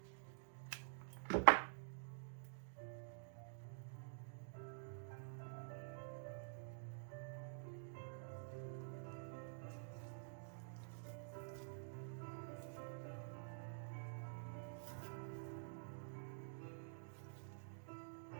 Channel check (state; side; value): silent; left; digital silence